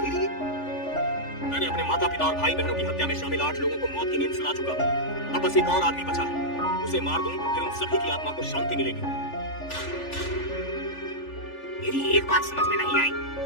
मैंने अपने माता पिता और भाई बहनों की हत्या में शामिल 8 लोगों को मौत की नींद सुला चुका हूँ। अब बस एक और आदमी बचा है, उसे मार दूं फिर उन सभी की आत्मा को शांति मिलेगी। मेरी एक बात समझ में नहीं आई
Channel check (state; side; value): late; right; 3.4 ms